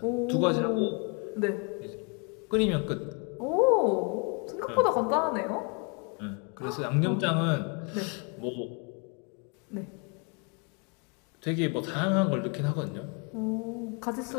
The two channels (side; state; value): right; quieter; 34.1 dB